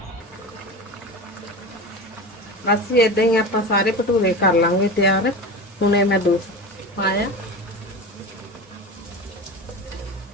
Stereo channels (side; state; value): both; normal; correlation 0.29